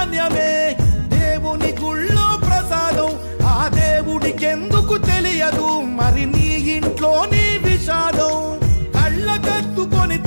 దేవుని గుళ్ళో ప్రసాదం, ఆ దేవుడికెందుకు తెలియదు మరి నీ ఇంట్లో నీ విషాదం. కళ్ళకత్తుకొని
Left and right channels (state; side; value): inverted; both; correlation -1.00